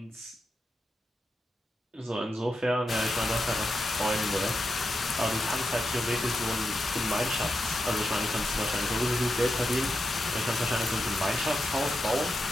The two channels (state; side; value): normal; both; correlation 0.87